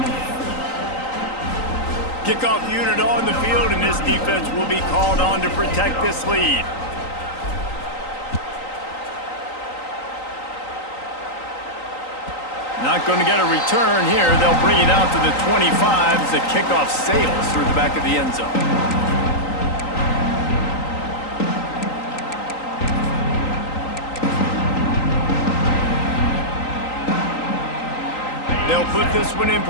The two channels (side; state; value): right; late; 3.9 ms